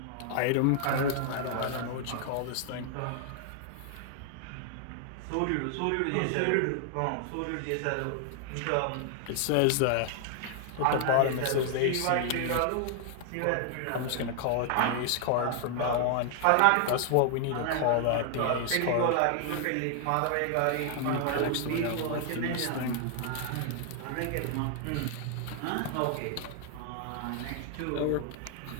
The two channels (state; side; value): different; both; correlation 0.00